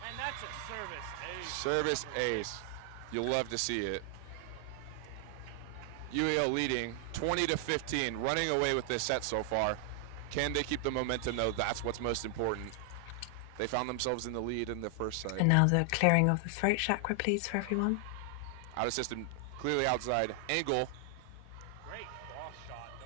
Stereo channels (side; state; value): both; different; correlation 0.00